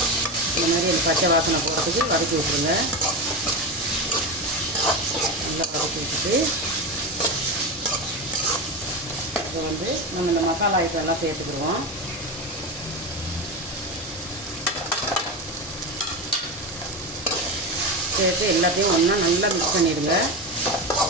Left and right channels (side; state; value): both; normal; correlation 0.19